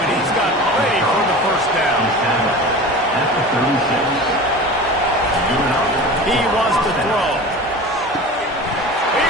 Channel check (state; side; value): normal; both; correlation 0.34